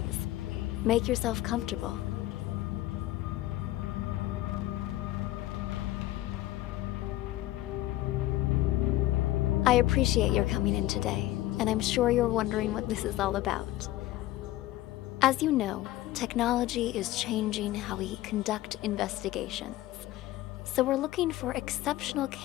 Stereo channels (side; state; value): right; quieter; 15.7 dB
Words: make yourself comfortable. I appreciate your coming in today, and I'm sure you're wondering what this is all about. As you know, technology is changing how we conduct investigations. So we're looking for exceptional